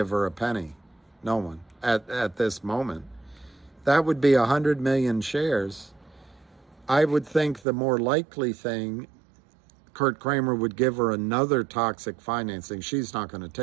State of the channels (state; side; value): drops out; left; at 7.7 s